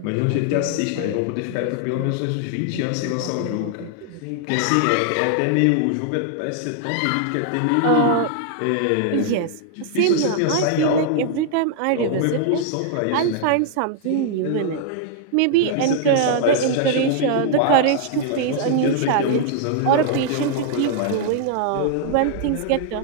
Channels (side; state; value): both; different; correlation -0.01